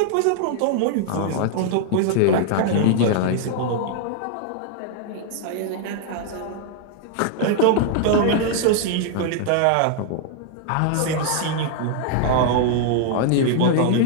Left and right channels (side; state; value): both; different; correlation -0.01